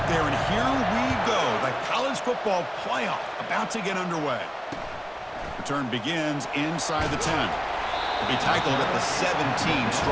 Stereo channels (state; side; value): identical; both; correlation 1.00